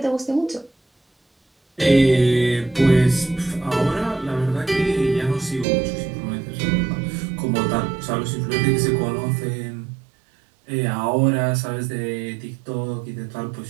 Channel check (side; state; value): left; drops out; at 5.7 s